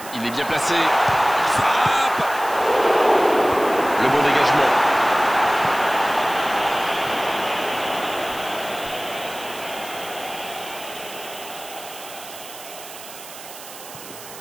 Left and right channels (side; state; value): right; noise; hiss, 15 dB below the sound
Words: Il est bien placé. Il frappe. Le bon dégagement.